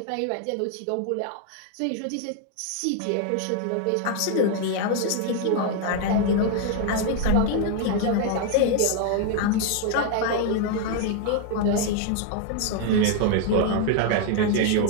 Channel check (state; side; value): different; both; correlation 0.00